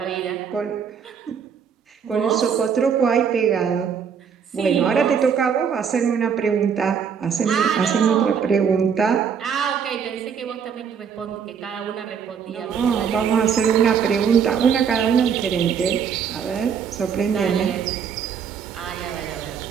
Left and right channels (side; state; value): left; quieter; 7.1 dB